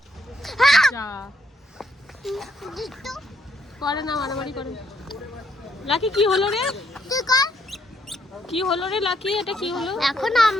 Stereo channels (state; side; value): normal; both; correlation 0.73